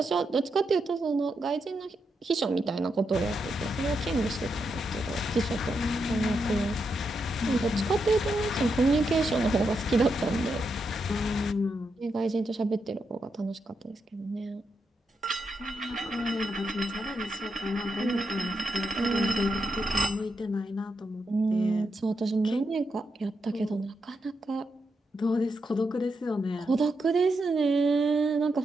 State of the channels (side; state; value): both; normal; correlation 0.83